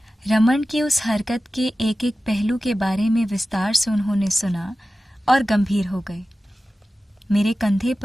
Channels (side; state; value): both; normal; correlation 0.95